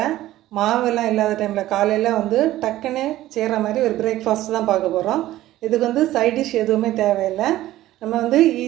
மாவெல்லாம் இல்லாத டைம்ல காலையில டக்குன்னு செய்யற மாதிரி ஒரு பிரேக்ஃபாஸ்ட் தான் பார்க்க போறோம். இதுக்கு சைட் டிஷ் எதுவுமே தேவையில்லை. நம்ம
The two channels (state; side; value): quieter; left; 15.0 dB